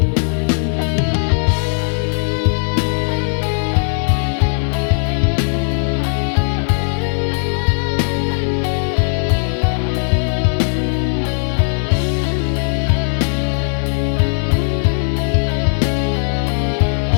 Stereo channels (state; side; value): silent; right; digital silence